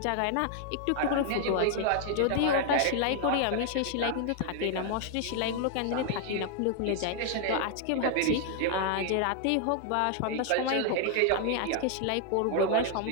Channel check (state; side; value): different; both; correlation 0.00